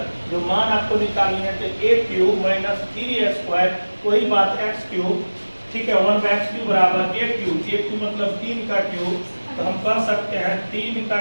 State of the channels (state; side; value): inverted; both; correlation -1.00